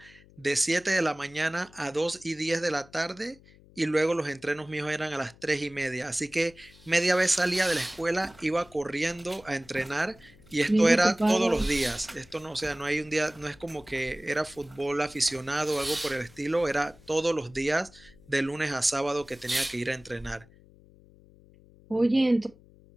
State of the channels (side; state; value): left; noise; hum, 25 dB below the sound